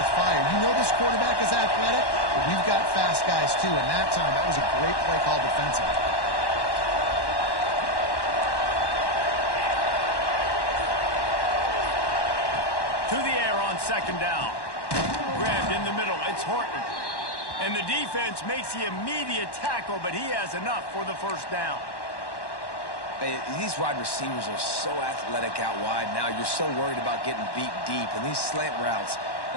fire. You know this quarterback is athletic, but we've got fast guys too, and that time, that was a great play call defensively. To the air on second down. Grabbed in the middle. It's Horton. And the defense makes the immediate tackle, but he has enough for the first down. Hey, these wide receivers are so athletic out wide now. You're so worried about getting beat deep. And these slant routes,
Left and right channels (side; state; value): right; late; 1.1 ms